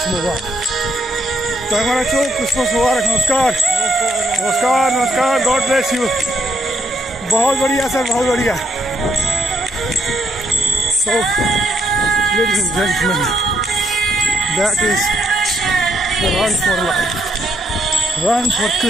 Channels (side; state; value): both; normal; correlation 0.74